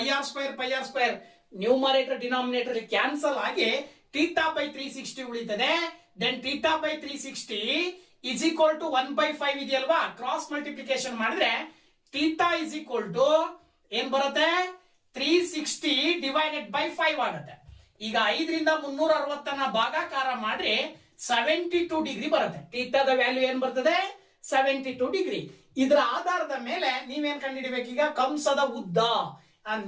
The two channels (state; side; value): identical; both; correlation 1.00